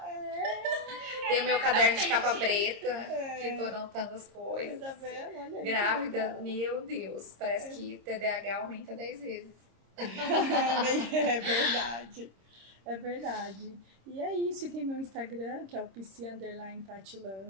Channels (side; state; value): left; late; 26 ms